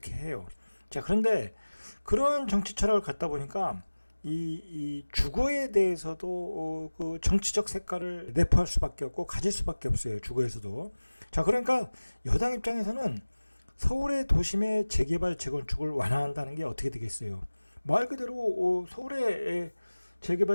해요. 자, 그런데 그런 정치 철학을 갖다 보니까 이 주거에 대해서도 그 정치적 색깔을 내포할 수밖에 없고 가질 수밖에 없어요. 주거에서도. 자, 그러니까 여당 입장에서는 서울의 도심의 재개발, 재건축을 완화한다는 게 어떻게 되겠어요? 말 그대로 서울의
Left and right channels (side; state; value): both; inverted; correlation -1.00